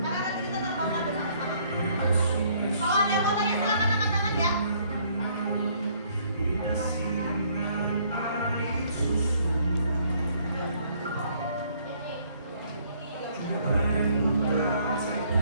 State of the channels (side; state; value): both; inverted; correlation -0.64